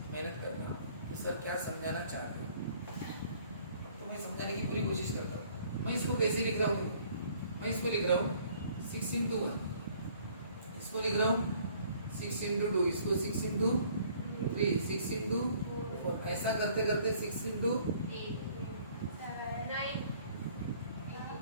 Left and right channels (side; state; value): both; inverted; correlation -0.58